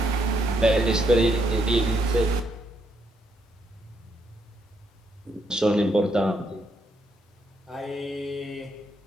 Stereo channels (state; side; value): normal; both; correlation 0.75